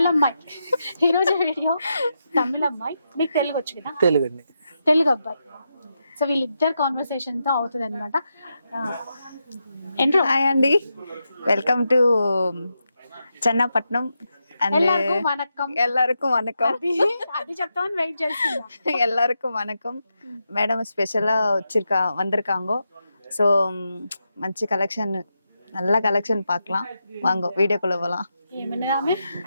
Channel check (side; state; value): both; inverted; correlation -0.86